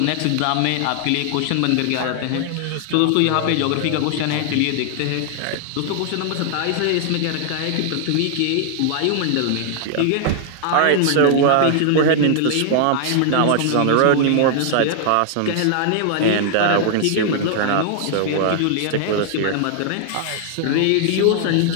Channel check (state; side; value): different; both; correlation 0.00